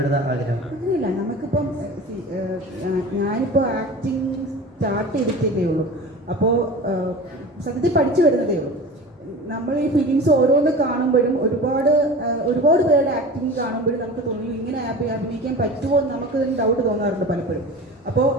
ആഗ്രഹം അങ്ങനെയില്ല. നമുക്കിപ്പം ഞാനിപ്പോ ആക്ടിങ് സ്റ്റാർട്ട് ചെയ്തിട്ടേ ഉള്ളൂ. അപ്പോൾ സത്യത്തിൽ പഠിച്ചു വരുന്നതേ ഉള്ളൂ. നമ്മൾ ഈ ഫിലിംസ് ഓരോന്ന് കാണുമ്പോഴും ഒരുപാട് പേരുടെ ആക്ടിങ് കാണുമ്പോഴും നമുക്ക് തോന്നി ഇങ്ങനെ അഭിനയിക്കാൻ പറ്റുമോ എന്ന് നമുക്ക് ഡൗട്ട് തോന്നാറുണ്ട് പലപ്പോഴും. അപ്പോൾ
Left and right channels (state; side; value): normal; both; correlation 0.35